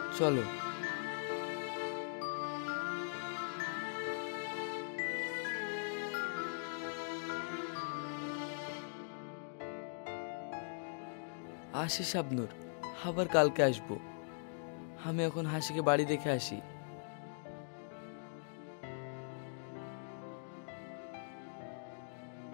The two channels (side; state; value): right; silent; digital silence